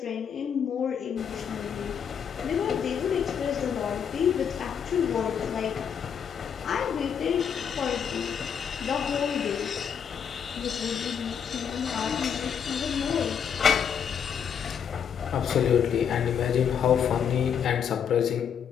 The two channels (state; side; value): quieter; right; 7.7 dB